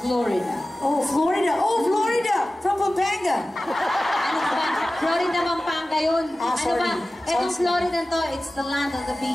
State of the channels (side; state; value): both; normal; correlation 0.96